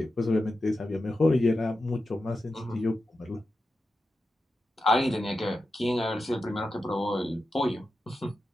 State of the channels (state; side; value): normal; both; correlation 0.90